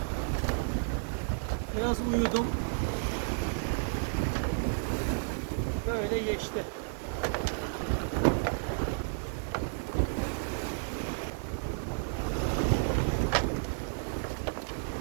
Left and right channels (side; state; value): left; silent; digital silence